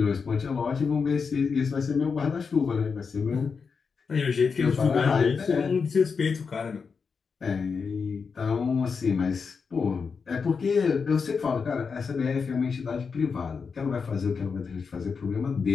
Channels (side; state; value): right; quieter; 5.5 dB